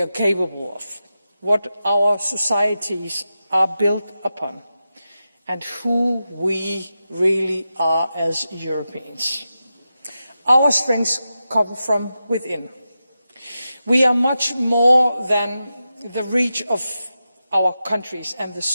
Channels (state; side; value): inverted; both; correlation -0.91